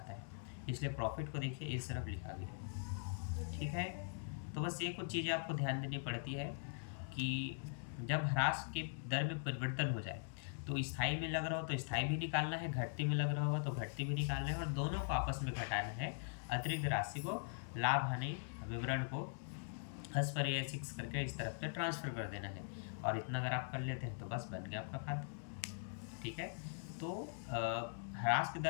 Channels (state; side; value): silent; right; digital silence